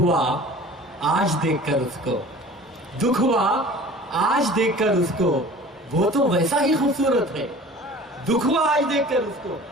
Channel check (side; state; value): both; normal; correlation 0.43